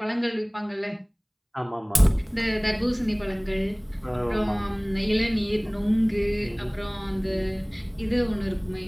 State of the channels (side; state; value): both; identical; correlation 1.00